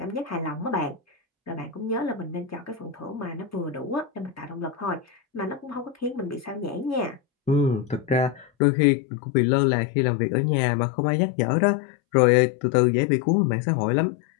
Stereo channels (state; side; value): drops out; right; at 8.5 s